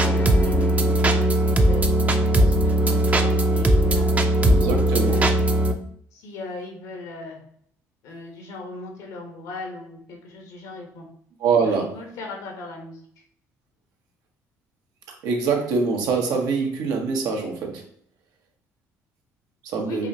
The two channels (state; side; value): normal; both; correlation 0.63